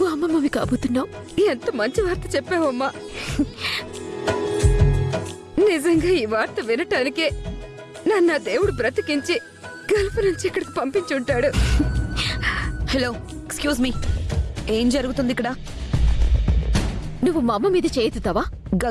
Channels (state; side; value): identical; both; correlation 1.00